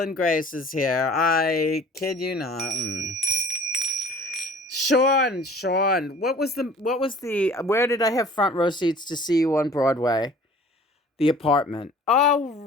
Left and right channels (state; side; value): normal; both; correlation 0.48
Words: Grace is here. I kid you not. Sean, where did I have front row seats to see you on Broadway? The Apartment. Oh,